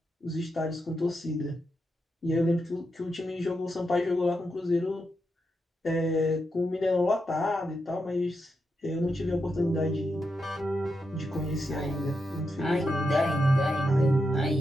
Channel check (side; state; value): both; normal; correlation 0.85